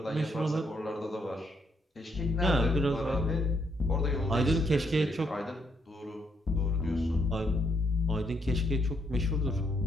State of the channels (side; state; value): both; normal; correlation 0.74